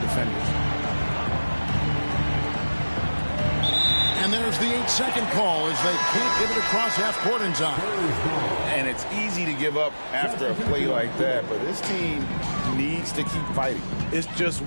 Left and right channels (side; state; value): both; inverted; correlation -1.00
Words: And there's the 8-second call as they can't get it across half court in time. And it's easy to give up after a play like that, but this team needs to keep fighting. It's just